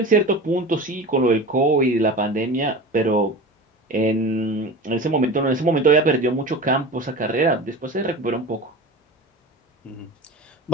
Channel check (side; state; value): both; normal; correlation 0.33